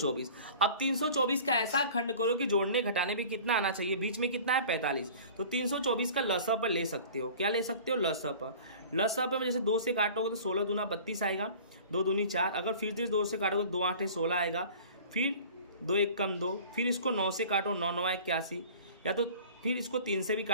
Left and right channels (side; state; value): both; inverted; correlation -0.43